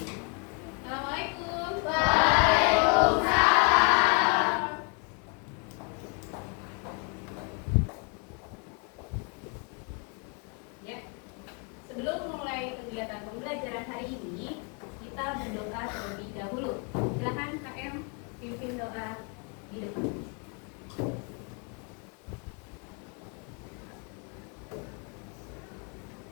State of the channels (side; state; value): right; quieter; 35.9 dB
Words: Assalamualaikum. Waalaikumsalam. Ya, sebelum mulai kegiatan pembelajaran hari ini, kita berdoa terlebih dahulu. Silakan KM pimpin doa di depan.